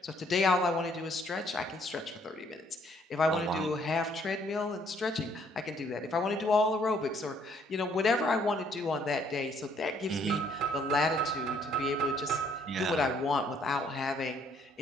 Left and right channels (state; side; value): normal; both; correlation 0.65